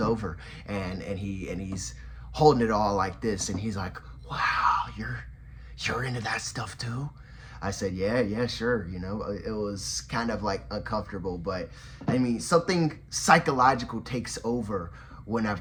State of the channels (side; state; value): both; identical; correlation 1.00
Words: over and he's holding it all like this, and he's like, wow, you're into that stuff too? I said, yeah, sure. It was kind of like uncomfortable, but I mean, something psychological takes over when I've